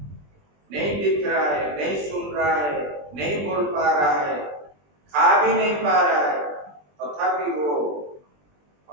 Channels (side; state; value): left; late; 20 ms